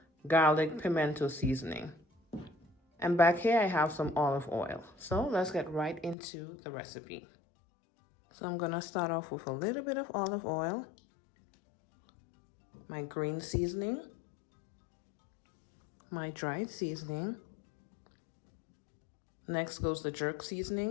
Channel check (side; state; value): right; drops out; at 6.2 s